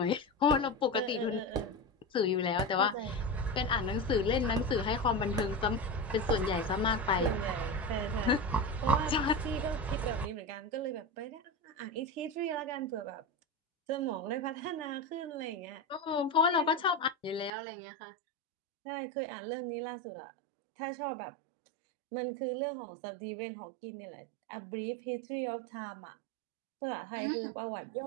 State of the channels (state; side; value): drops out; left; at 17.5 s